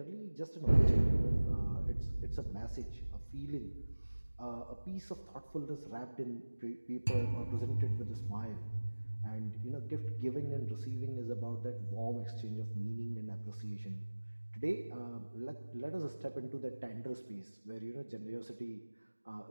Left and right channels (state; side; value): inverted; both; correlation -1.00